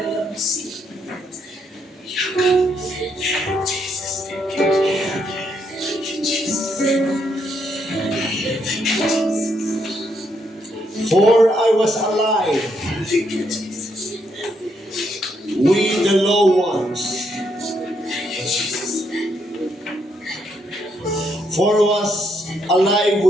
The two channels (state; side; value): normal; both; correlation 0.76